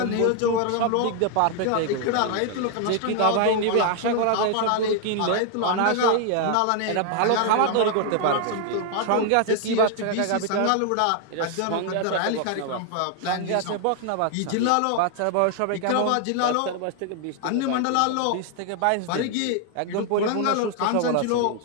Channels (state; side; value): different; both; correlation 0.00